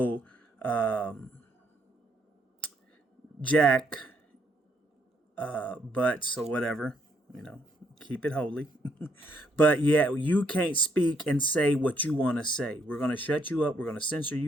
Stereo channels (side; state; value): both; normal; correlation 0.72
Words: jack butts or whatever, keep it holy. But yeah, you can't speak and say what you want to say. We're going to shut you up. We're going to censor